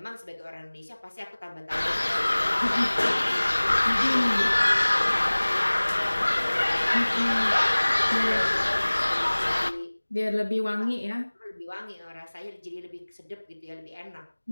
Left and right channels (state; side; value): inverted; both; correlation -1.00